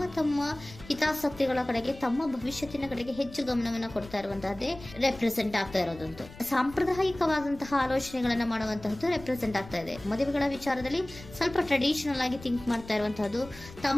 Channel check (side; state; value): left; noise; rumble, 17 dB below the sound